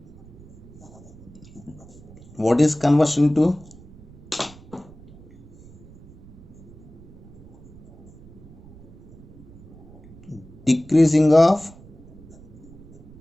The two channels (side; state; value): right; noise; rumble, 21 dB below the sound